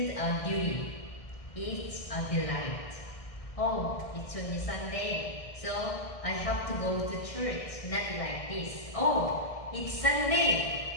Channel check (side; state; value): right; late; 1.6 ms